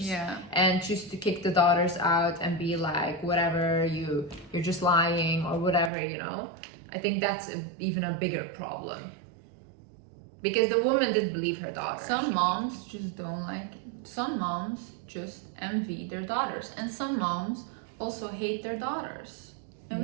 Yeah. And choose to kick the daughters out and be like, whatever, you're just lying or whatever, you know. I think that's even a bigger problem. Because the woman did believe her daughter. Some moms just don't like it. Some moms just envy their daughters. And some moms also hate their daughters. And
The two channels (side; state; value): left; drops out; at 5.9 s